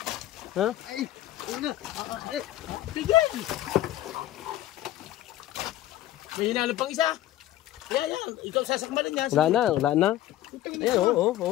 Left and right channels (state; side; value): quieter; right; 14.0 dB